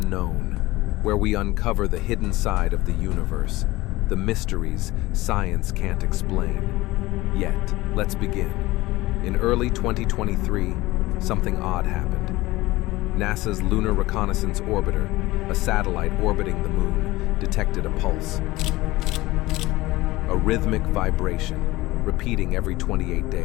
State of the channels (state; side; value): quieter; right; 19.3 dB